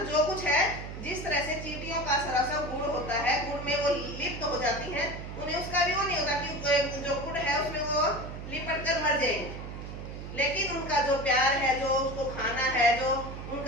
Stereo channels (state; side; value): noise; right; hum, 9 dB below the sound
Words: जो कुछ है, जिस तरह से चींटियों का सरासर गुड़ होता है, गुड़ में वो लिप्त हो जाती हैं, उन्हें उसका भी वो नहीं होता कि जो गुड़ है उसमें वो लिपट कर मर जाएंगे। लेकिन उनका जो प्यार है, जो उसको खाना है, जो